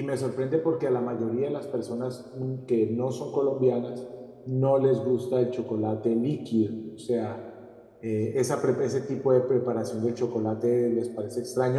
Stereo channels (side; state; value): both; identical; correlation 1.00